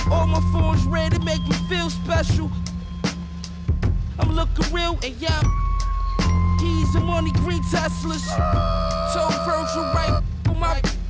All my phones red to make me feel special. I'm looking real and yeah, keys and money green Teslas. So Virgil right on my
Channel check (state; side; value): identical; both; correlation 1.00